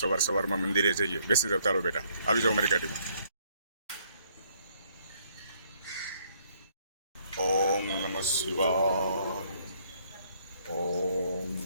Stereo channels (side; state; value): both; inverted; correlation -0.67